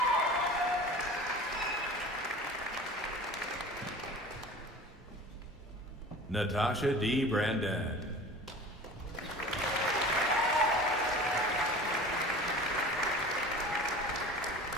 Natasha D. Brandon.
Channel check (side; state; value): both; normal; correlation 0.39